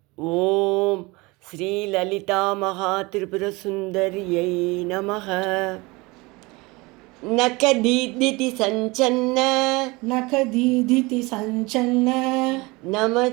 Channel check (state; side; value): quieter; left; 24.1 dB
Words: ఓం శ్రీ లలితా మహాత్రిపురసుందర్యై నమః. నఖదీదితి సంచన్న నఖదీదితి సంచన్న